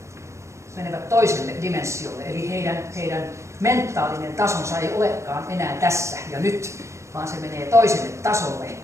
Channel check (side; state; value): left; late; 0.14 ms